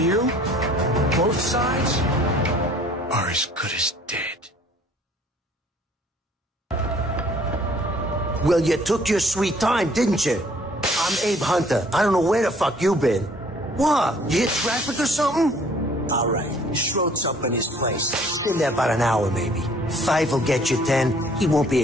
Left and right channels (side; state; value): both; normal; correlation 0.56